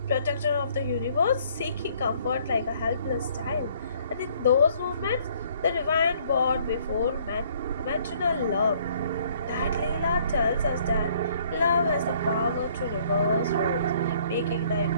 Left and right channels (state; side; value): inverted; both; correlation -0.61